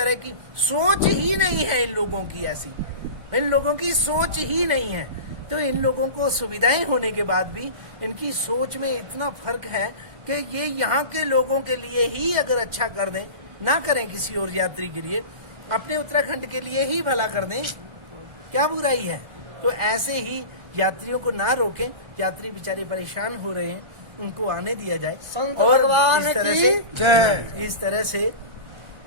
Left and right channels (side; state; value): left; late; 1.4 ms